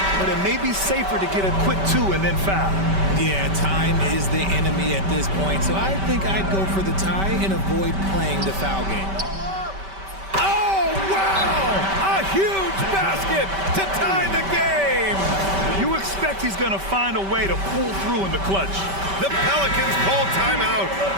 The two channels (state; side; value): late; left; 5.2 ms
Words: But it may be safer to get a quick 2 and then foul. Yeah, time is the enemy at this point, so I think I'd go for the tie and avoid playing the foul game. Oh, wow! A huge basket to tie the game! You expect he's going to find a way to pull through in the clutch. The Pelicans call timeout.